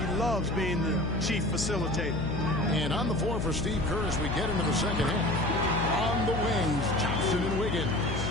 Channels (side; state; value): left; noise; hum, 2 dB below the sound